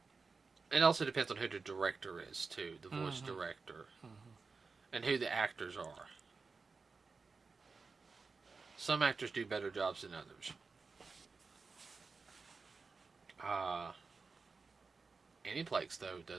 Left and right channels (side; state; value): left; quieter; 4.5 dB